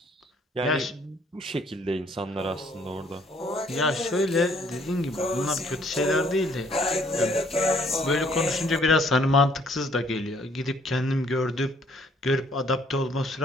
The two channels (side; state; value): both; normal; correlation 0.63